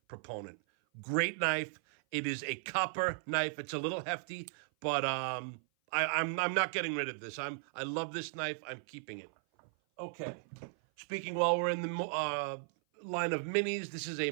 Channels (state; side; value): silent; left; 54 dB below the other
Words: proponent. Great knife. It is a copper knife. It's a little hefty, but I'm not getting rid of this. I love this knife. I'm keeping it. Okay, speaking while we're in the line of minis, this is a